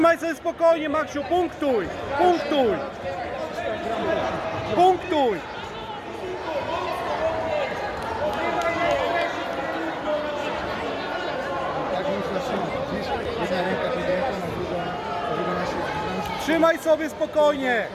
sobie spokojnie, Maksiu, punktuj! Punktuj! Punktuj! Tak muszę trzymać. Jedna ręka podjęta, na drugą na siebie. Trzymaj sobie spokojnie!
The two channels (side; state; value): both; identical; correlation 1.00